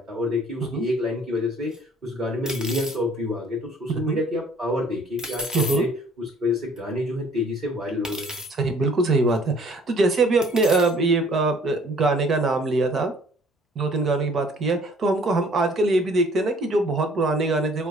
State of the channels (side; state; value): both; normal; correlation 0.56